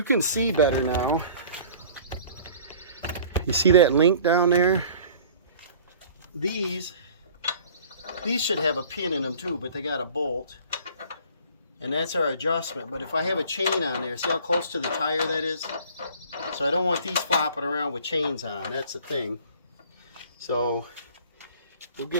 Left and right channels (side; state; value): both; inverted; correlation -0.48